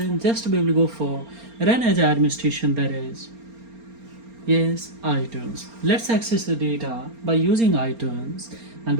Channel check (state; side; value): late; left; 4.3 ms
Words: just we will go for run as administration, that is yes, iTunes. Let's access the data by using iTunes and